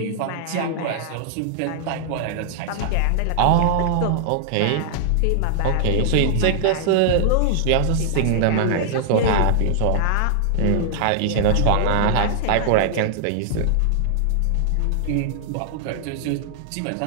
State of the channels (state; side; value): different; both; correlation -0.01